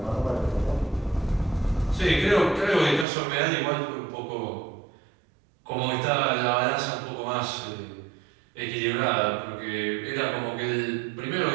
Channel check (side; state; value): left; drops out; at 3.1 s